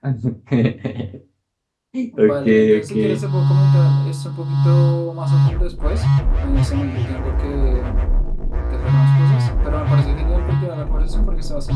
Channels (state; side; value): identical; both; correlation 1.00